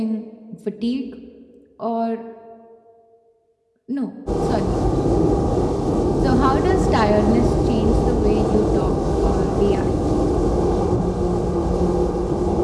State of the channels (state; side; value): identical; both; correlation 1.00